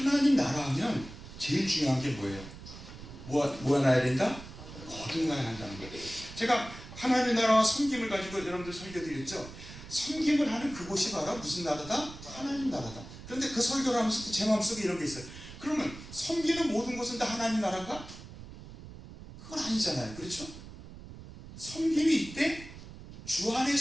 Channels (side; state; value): right; noise; rumble, 14 dB below the sound